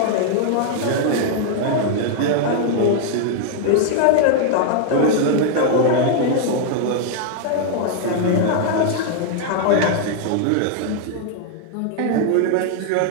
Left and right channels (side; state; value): both; different; correlation 0.00